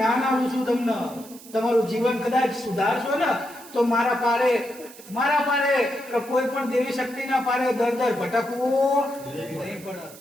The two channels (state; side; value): noise; right; hiss, 19 dB below the sound